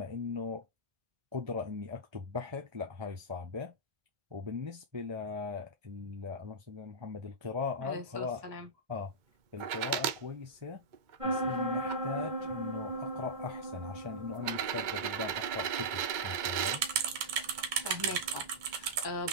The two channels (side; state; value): left; late; 2.2 ms